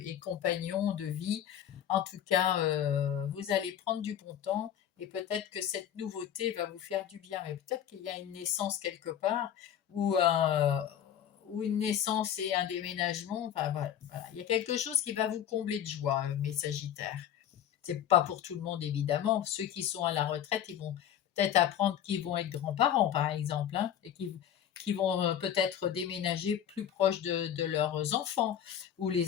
et compagnons de vie. En tout cas, vous allez prendre du bon temps et peut-être que cette nouveauté va vous faire du bien. Mais peut-être qu'il y a une naissance quelque part ou une naissance et un déménagement. Enfin, voilà. Il y a quelque chose qui va vous combler de joie, mes Sagittaires. C'est pas pour tout le monde, évidemment. Ceux qui sont à la retraite, ils vont peut-être apprendre qu'ils vont être grands-parents, par exemple, hein, et qui vont peut-être déménager plus proche de leurs enfants, ou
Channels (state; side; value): quieter; right; 10.1 dB